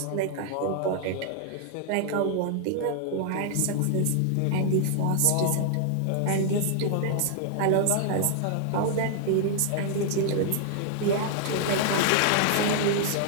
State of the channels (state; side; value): different; both; correlation 0.00